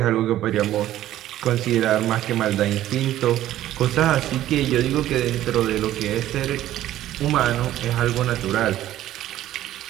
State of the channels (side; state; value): left; quieter; 13.4 dB